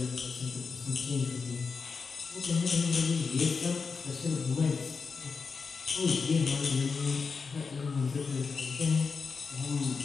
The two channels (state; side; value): quieter; right; 5.0 dB